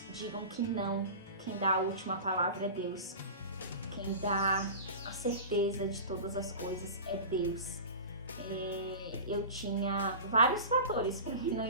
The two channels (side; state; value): both; inverted; correlation -0.32